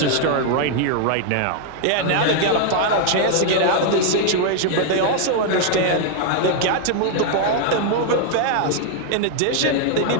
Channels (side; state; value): both; different; correlation 0.00